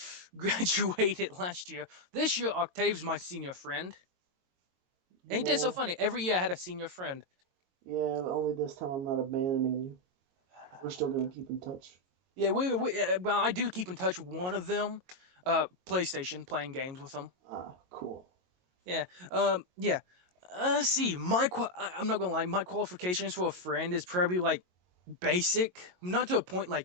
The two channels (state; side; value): late; left; 22 ms